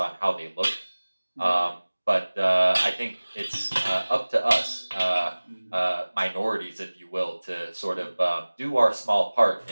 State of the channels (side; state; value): both; inverted; correlation -1.00